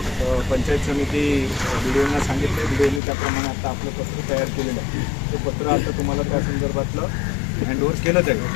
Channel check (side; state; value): right; drops out; at 3.0 s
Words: पंचायत समिती BDOना सांगितलं, BDOनी त्याप्रमाणे आता आपलं पत्र तयार केलेलं आहे। ते पत्र आता तुम्हाला त्या संदर्भातलं हँडओव्हर केलं जाईल,